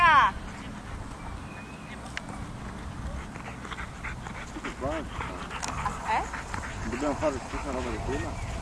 Dobbiamo fare la stessa roba di prima?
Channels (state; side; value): identical; both; correlation 1.00